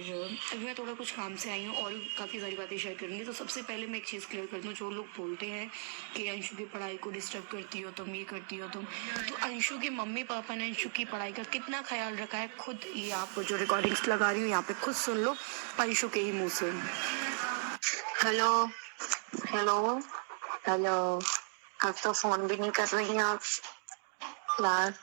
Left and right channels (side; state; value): left; silent; 54 dB below the other